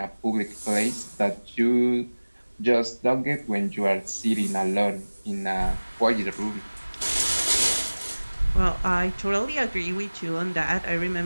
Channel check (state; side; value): inverted; both; correlation -1.00